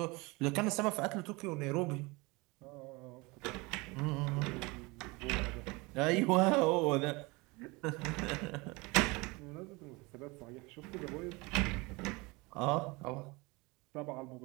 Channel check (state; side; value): quieter; left; 25.1 dB